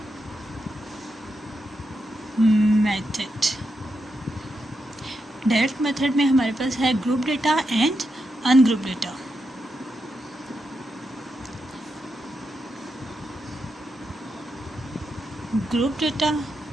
method, direct method में हमारे पास है group data and ungroup data. Group data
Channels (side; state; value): both; normal; correlation 0.85